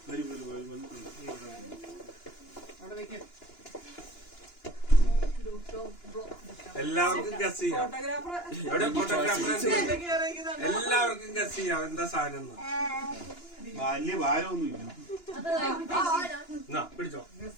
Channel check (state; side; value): late; right; 2.9 ms